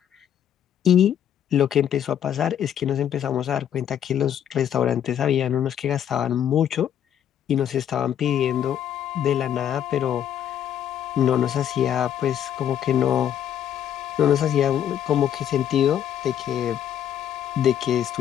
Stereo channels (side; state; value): right; quieter; 9.9 dB